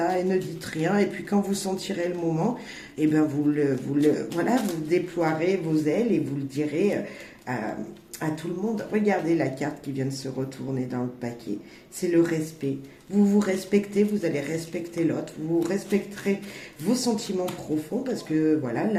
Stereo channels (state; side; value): identical; both; correlation 1.00